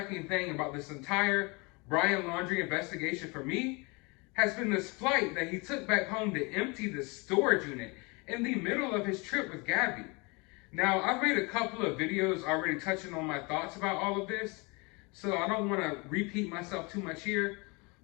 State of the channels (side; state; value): right; quieter; 28.4 dB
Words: thing about this entire Brian Laundrie investigation for me has been this flight that he took back home to empty the storage unit in the middle of his trip with Gabby. Now, I've made a couple of videos already touching on my thoughts about all of this, so I don't want to repeat myself too much here.